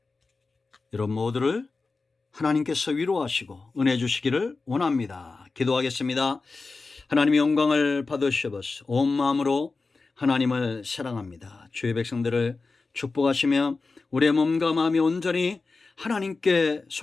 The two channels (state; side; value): quieter; right; 3.9 dB